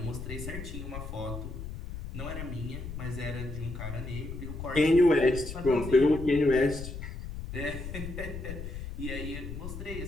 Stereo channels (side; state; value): left; noise; rumble, 8 dB below the sound